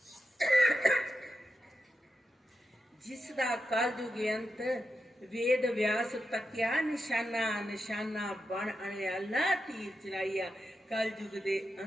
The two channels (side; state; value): both; normal; correlation 0.88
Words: ਜਿਸ ਦਾ ਕਲਯੁਗ ਅੰਤ ਵੇਦ ਵਿਆਸ ਤੱਕਿਆ, ਨਿਸ਼ਾਨਾ ਨਿਸ਼ਾਨਾ ਬਣ ਅਣਿਆਲਾ ਤੀਰ ਚਲਾਈਆ। ਕਲਯੁਗ ਦੇ